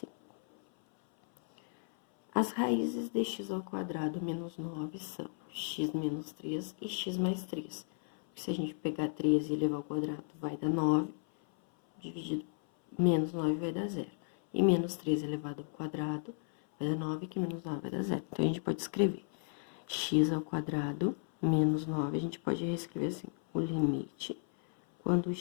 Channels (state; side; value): silent; right; 55 dB below the other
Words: As raízes de x ao quadrado menos 9 são x menos 3 e x mais 3. Se a gente pegar 3 e elevar ao quadrado, vai dar 9, dividido menos 9 vai dar 0. E menos 3 elevado ao quadrado vai dar 9, que menos 9 vai dar 0. Então, a gente pode escrever x ao quadrado menos 9, a gente pode reescrever assim, o limite quando